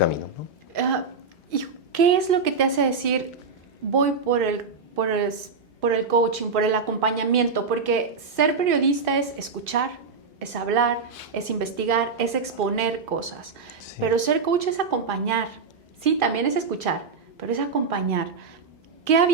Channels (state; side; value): quieter; left; 4.7 dB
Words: ¿no? ¿Y qué es lo que te hace decir, voy por el coaching, por el acompañamiento? Porque ser periodista es escuchar, es hablar, es investigar, es exponer cosas. Sí. Pero ser coach es acompañar. Sí, también es escuchar, pero es acompañar. ¿Qué